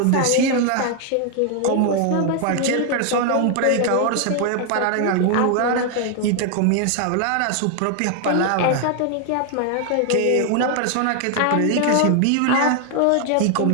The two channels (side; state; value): both; different; correlation 0.00